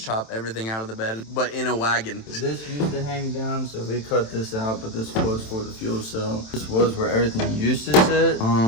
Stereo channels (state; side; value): late; right; 27 ms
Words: chop everything out of the bed, but in a wagon. This used to hang down, so we cut this out, but this was for the fuel cell. This was where everything used to sit.